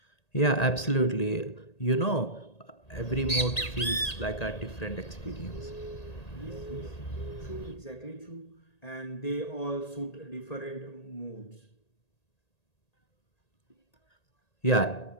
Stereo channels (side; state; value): right; late; 1.8 ms